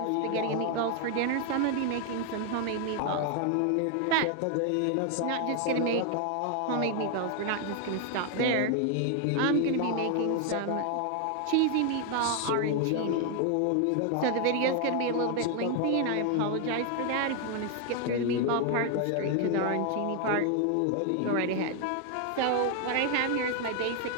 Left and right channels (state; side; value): different; both; correlation 0.00